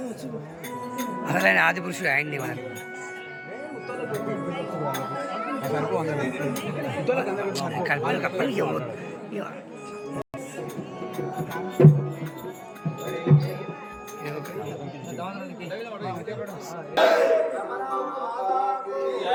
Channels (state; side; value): identical; both; correlation 1.00